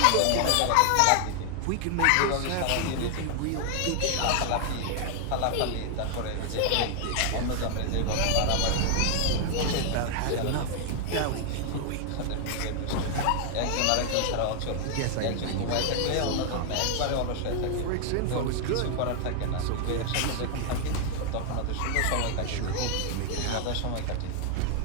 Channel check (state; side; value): different; both; correlation 0.00